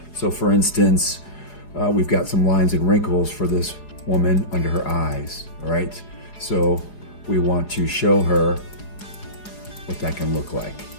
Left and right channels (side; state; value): right; late; 4.8 ms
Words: So for instance, we've got some lines and wrinkles for this woman under her eyes, all right? So we want to show her what that can look like.